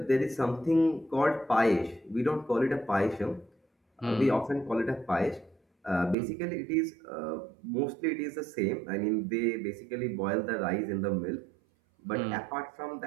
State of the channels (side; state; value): left; drops out; at 6.2 s